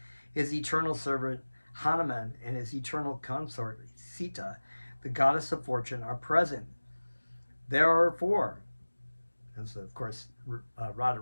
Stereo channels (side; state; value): both; inverted; correlation -1.00